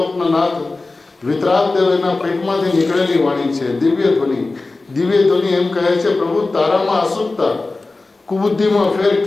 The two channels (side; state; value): right; quieter; 3.4 dB